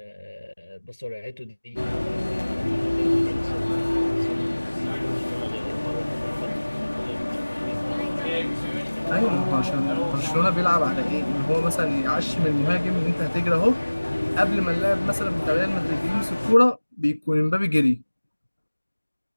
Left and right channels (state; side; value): inverted; both; correlation -1.00